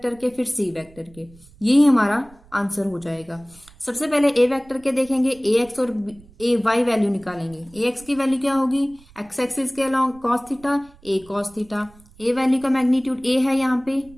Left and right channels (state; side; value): noise; right; rumble, 25 dB below the sound